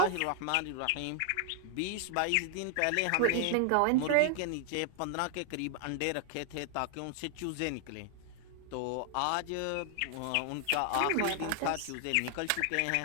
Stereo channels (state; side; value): different; both; correlation 0.00